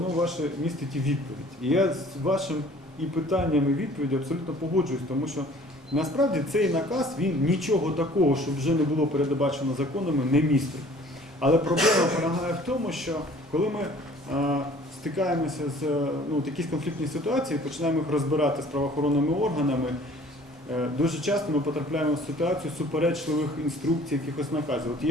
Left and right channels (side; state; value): both; normal; correlation 0.52